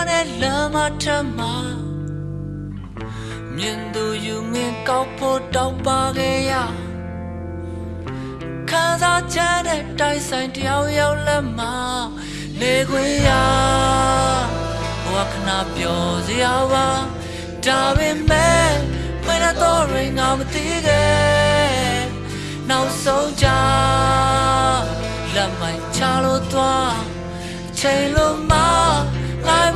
နဲ့လမ်းမထမမြင်သူယူငင်ကောက်ဖို့တောက်ပါခဲ့ရခံစားချက်နဲ့တိုက်ဆိုင်တယောက်ယောက်လက်မနေခွင့်ရဘဝခဏပျော်စရာပါဒါပေမဲ့မင်းတော့ရင်ငါမသိခဲ့နောက်ဆုံးကြလက်မိုက်ချလို့သွားချိန်လို့မလိုက်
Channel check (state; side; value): identical; both; correlation 1.00